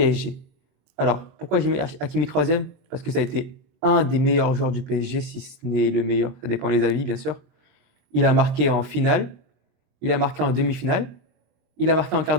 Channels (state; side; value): late; left; 23 ms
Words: Alors, pourquoi j'ai mis Hakimi troisième? Parce que ça a été un des meilleurs joueurs du PSG, si ce n'est le meilleur, ça dépend des avis, bien sûr. Il a marqué en finale, il a marqué en demi-finale, il a marqué en quart